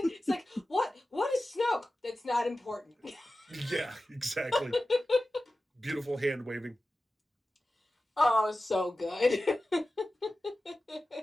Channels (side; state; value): both; normal; correlation 0.94